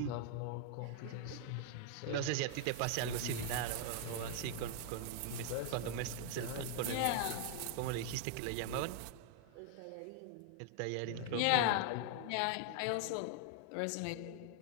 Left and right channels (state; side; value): different; both; correlation 0.00